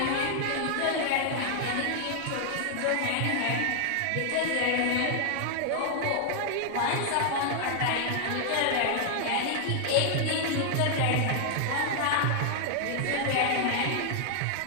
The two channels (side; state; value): both; different; correlation -0.01